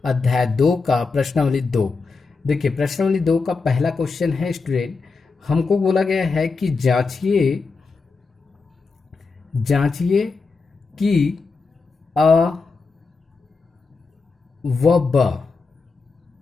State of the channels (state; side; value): quieter; right; 4.4 dB